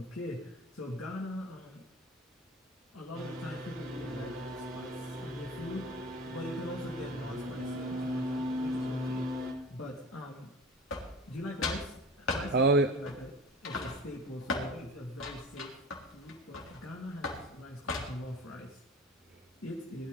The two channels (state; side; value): normal; both; correlation 0.38